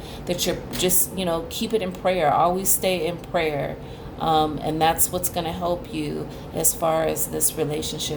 that you're just, keep it in prayer. Always stay in prayer. And that's what's going to help you as far as this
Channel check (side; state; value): both; identical; correlation 1.00